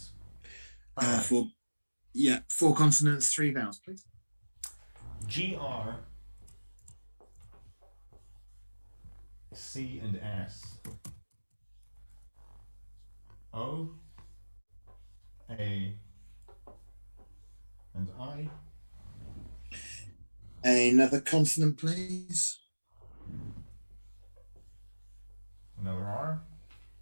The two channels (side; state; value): both; inverted; correlation -1.00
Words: 4 consonants, 3 vowels, please. GR, C and S, O, A, and I. Another consonant, please. Another R.